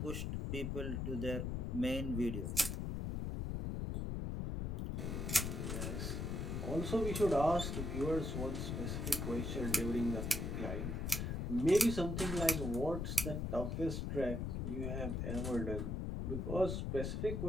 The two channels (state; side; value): noise; left; rumble, 2 dB below the sound